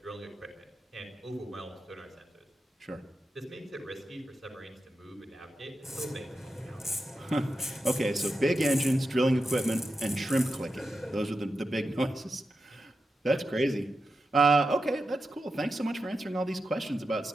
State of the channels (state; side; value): normal; both; correlation 0.89